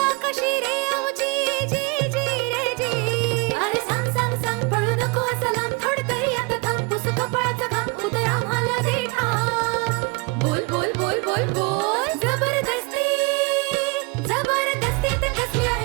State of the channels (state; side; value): quieter; left; 29.0 dB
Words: कशी रे आमची जी जी रे जी अरे सांग सांग सांग पळू नको सलाम थोड तरी आता थांब पुस कपाळाचा घाम उतर आम्हाला दे ठाम बोल बोल बोल बोल बोल जबरदस्ती जबरदस्ती तर कसली